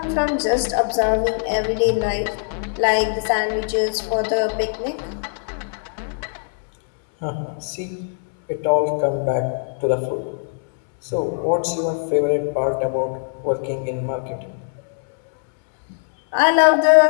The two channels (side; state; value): right; silent; digital silence